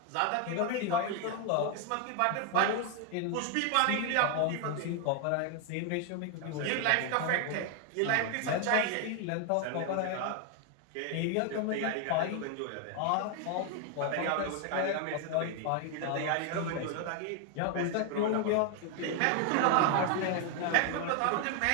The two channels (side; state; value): both; different; correlation 0.01